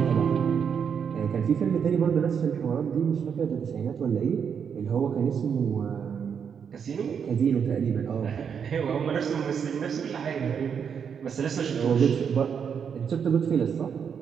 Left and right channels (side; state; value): left; quieter; 7.2 dB